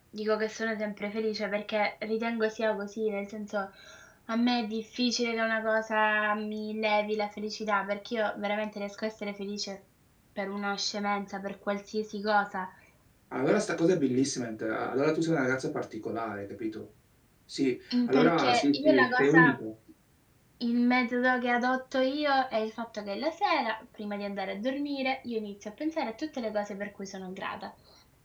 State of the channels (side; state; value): both; identical; correlation 1.00